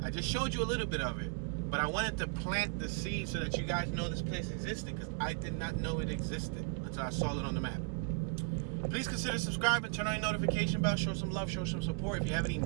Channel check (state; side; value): quieter; left; 32.2 dB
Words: I just showed you a little bit of it. But I wanted to plant the seed so that you guys know this place existed, because I did not know it existed until I saw it on the map. Please consider subscribing, turn on your notification bell, show some love, show some support. If you have any